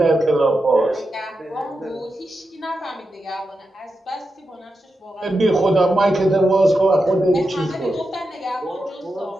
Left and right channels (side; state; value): both; normal; correlation 0.88